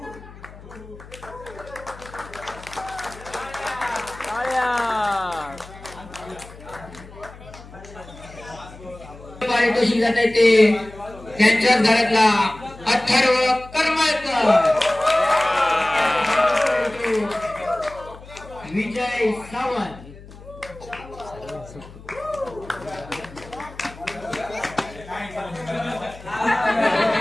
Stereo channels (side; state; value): left; noise; hum, 18 dB below the sound